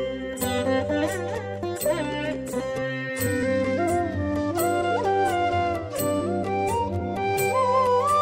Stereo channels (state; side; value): identical; both; correlation 1.00